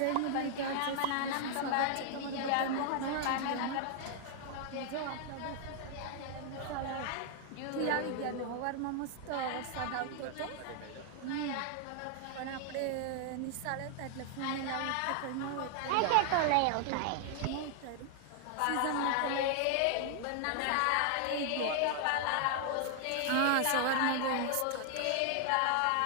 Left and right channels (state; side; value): different; both; correlation 0.00